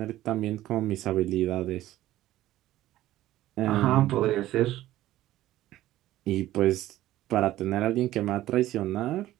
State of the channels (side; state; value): left; quieter; 14.8 dB